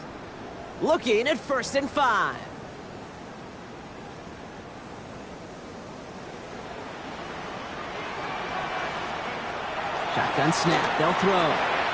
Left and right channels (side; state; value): both; identical; correlation 1.00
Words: looking at 1st and 5. Shotgun snap. They'll throw.